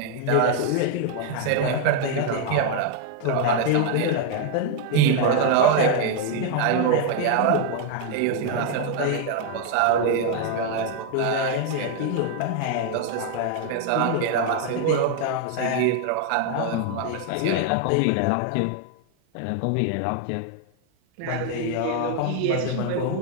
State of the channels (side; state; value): both; different; correlation 0.00